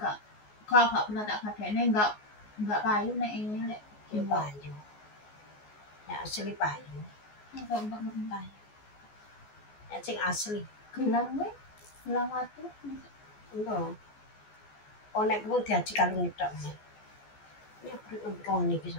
gak pernah tak gadekne enggak kayu nek ini lek. Ya payu. Ya asli payu. Enggak payu. Ya sing asli. Gelang gue, gelang watu. Enggak. Oh nek kuwi diaji kalung tok. Ya perlu niki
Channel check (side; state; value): right; late; 14 ms